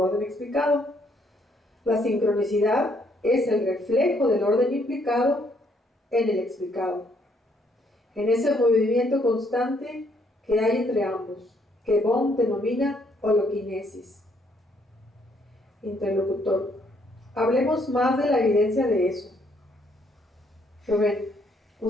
explicado. La sincronicidad es el reflejo del orden implicado en el explicado, en ese movimiento constante que hay entre ambos, que Bohm denomina holoquinesis. Interlocutor, hablemos más de la evidencia de eso. Rubén,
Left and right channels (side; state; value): both; normal; correlation 0.70